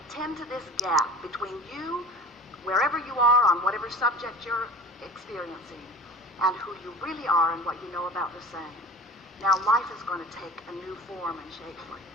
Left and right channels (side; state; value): both; normal; correlation 0.39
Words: tend to this gap between you, wherever you are on whatever subject you're experiencing, and who you really are and what you know about the same, now life is going to take a new form and shape for you.